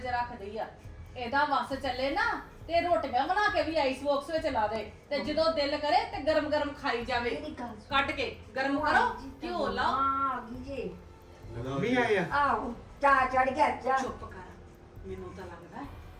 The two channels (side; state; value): both; identical; correlation 1.00